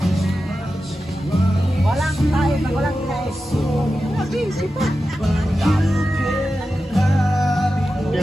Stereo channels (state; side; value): normal; both; correlation 0.92